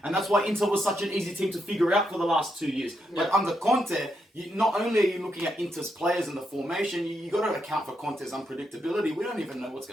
And that's why Inter was such an easy team to figure out for the last 2 years. Yeah. But under Conte, not only are you looking at Inter's players and the formation, you got to account for Conte's unpredictability. We don't even know what's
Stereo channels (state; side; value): normal; both; correlation 0.81